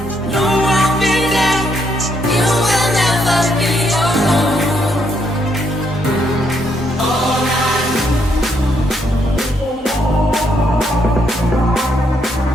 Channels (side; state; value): both; normal; correlation 0.74